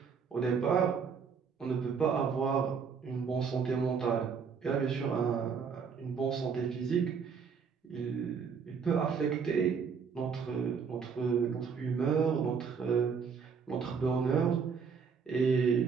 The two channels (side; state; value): left; quieter; 6.1 dB